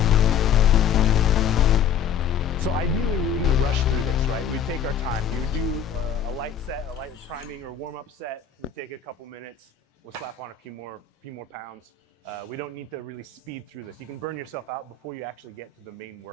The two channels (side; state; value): right; quieter; 7.4 dB